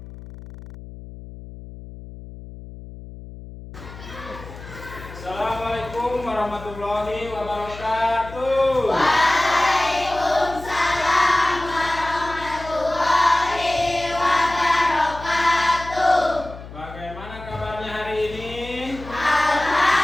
warahmatullahi wabarakatuh. Waalaikumsalam warahmatullahi wabarakatuh. Bagaimana kabarnya hari ini?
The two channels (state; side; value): noise; left; hum, 15 dB below the sound